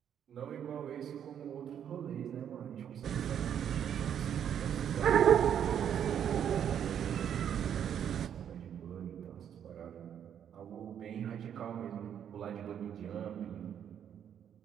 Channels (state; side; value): quieter; left; 9.1 dB